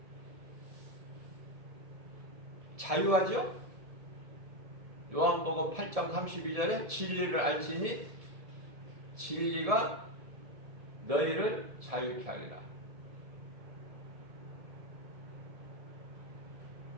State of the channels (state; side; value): late; left; 1.7 ms